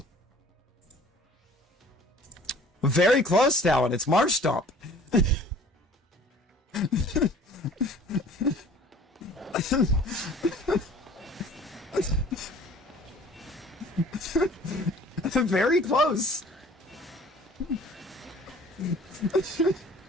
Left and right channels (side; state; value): both; normal; correlation 0.49